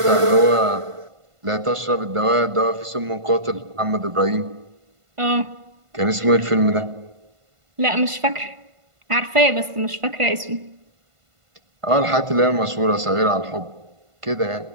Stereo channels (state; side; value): late; left; 1.5 ms